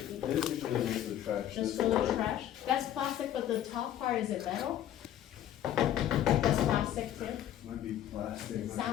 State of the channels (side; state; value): right; quieter; 11.4 dB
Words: This is usually goes to the trash. just This throw the part- trash? That's plastic, but the top part, is it metal? That's plastic too? Might be plastic. It